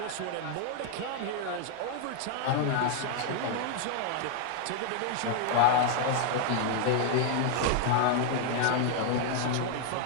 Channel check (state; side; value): different; both; correlation 0.00